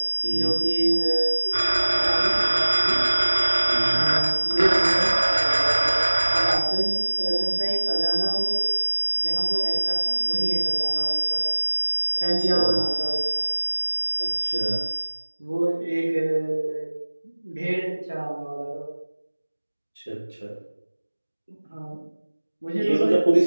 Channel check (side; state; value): both; inverted; correlation -1.00